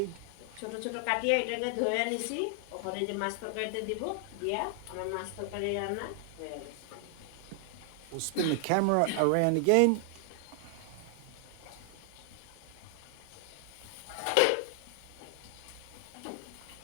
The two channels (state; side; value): different; both; correlation 0.00